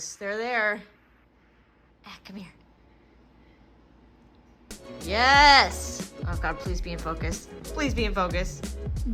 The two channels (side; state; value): both; identical; correlation 1.00